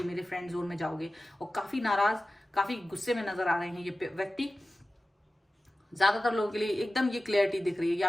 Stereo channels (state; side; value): normal; both; correlation 0.96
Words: मेरे फ्रेंड जोन में जाओगे। और काफी नाराज, काफी गुस्से में नजर आ रहे हैं ये व्यक्ति। ज्यादातर लोगों के लिए एकदम ये क्लियरिटी दिख रही है कि